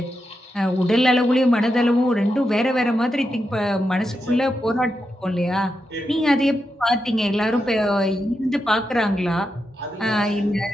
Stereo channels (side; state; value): both; normal; correlation 0.87